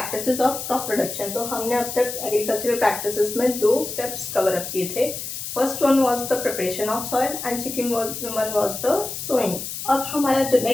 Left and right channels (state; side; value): noise; left; hiss, 7 dB below the sound